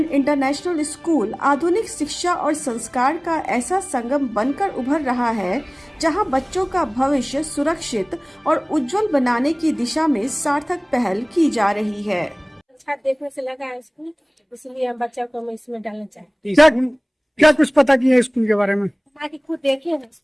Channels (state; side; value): identical; both; correlation 1.00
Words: इंटरनेशनल स्कूल आधुनिक शिक्षा और संस्कार का ऐसा संगम बनकर उभर रहा है, जहां बच्चों का भविष्य सुरक्षित और उज्जवल बनाने की दिशा में सार्थक पहल की जा रही है। अच्छा देखने से लगा है स्कूल, इसलिए हम बच्चों को हम इसमें डालना चाहते हैं। क्या कुछ पता किया है स्कूल के बारे में? ताकि खुद देखे हैं